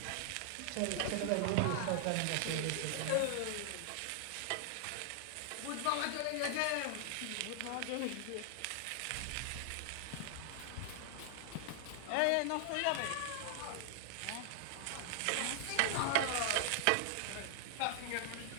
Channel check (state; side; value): different; both; correlation 0.00